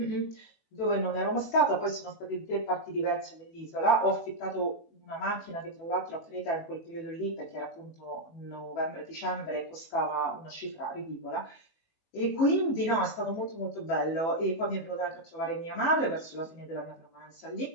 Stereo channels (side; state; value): right; late; 19 ms